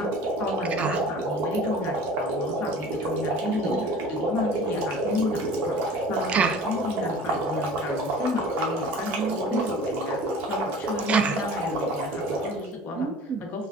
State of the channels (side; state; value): both; normal; correlation 0.43